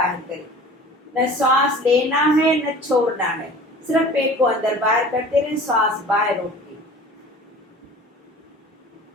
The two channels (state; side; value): normal; both; correlation 0.43